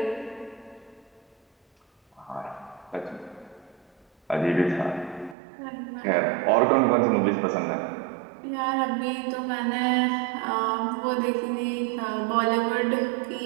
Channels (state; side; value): drops out; left; at 5.4 s